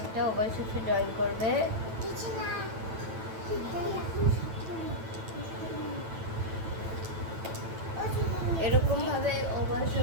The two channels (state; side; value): late; left; 9.1 ms